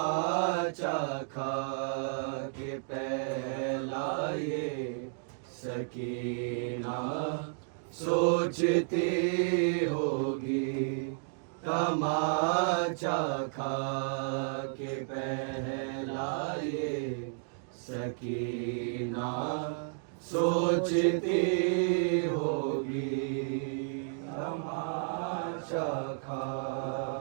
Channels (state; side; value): silent; left; digital silence